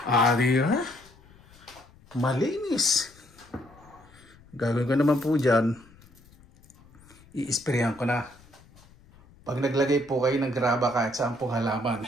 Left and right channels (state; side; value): noise; left; rumble, 26 dB below the sound